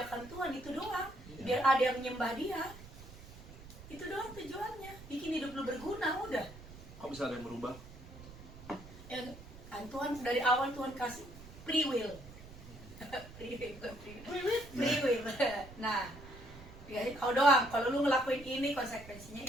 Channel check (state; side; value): noise; right; rumble, 16 dB below the sound